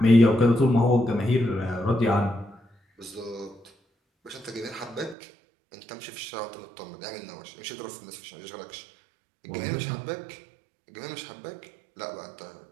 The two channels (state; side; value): drops out; left; at 5.2 s